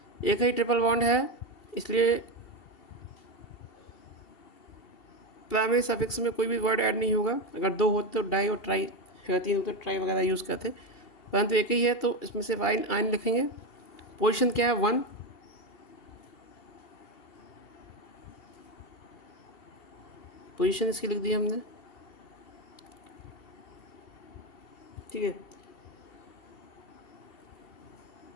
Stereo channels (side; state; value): right; late; 2.7 ms